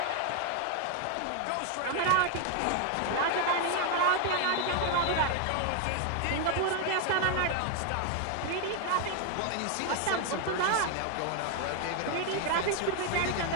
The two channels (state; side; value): different; both; correlation 0.00